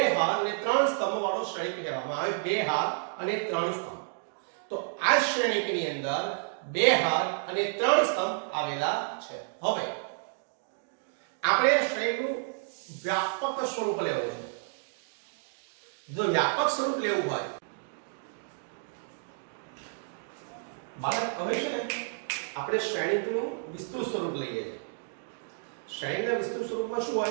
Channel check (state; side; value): silent; left; digital silence